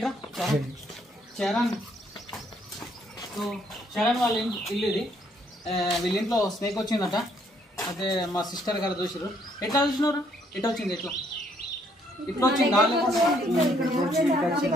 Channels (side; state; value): both; normal; correlation 0.68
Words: చరణ్. సో చరణ్ వాళ్ళ ఇల్లు ఇది. వీళ్ళ ఇంట్లో స్నేక్ వచ్చిందట. అయితే మా సిస్టర్ గారు చూసారు. ఎట్లా చూసినారు? ఎట్లా వచ్చింది? ఎట్లా ఇట్లా వచ్చింది?